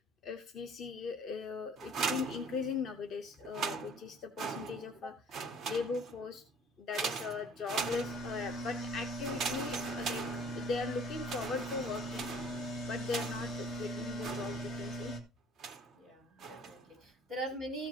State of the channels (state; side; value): normal; both; correlation 0.53